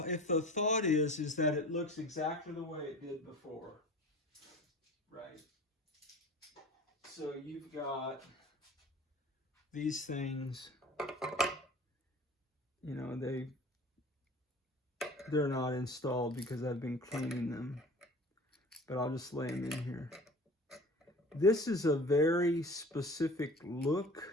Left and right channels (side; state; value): both; normal; correlation 0.41